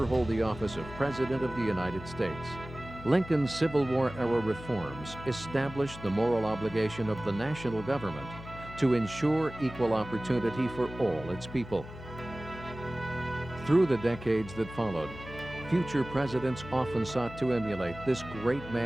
hold the office of President of the United States. Lincoln's Civil War-era reforms established the moral obligation of the national government to ensure equal opportunity for all its people. Through the decades that followed, future presidents often sought to emulate this great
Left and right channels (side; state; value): left; noise; hum, 13 dB below the sound